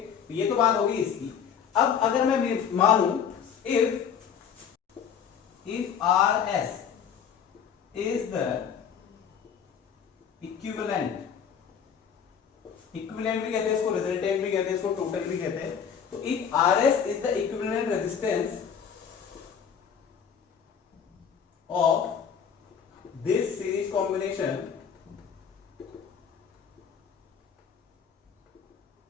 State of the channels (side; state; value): right; quieter; 7.6 dB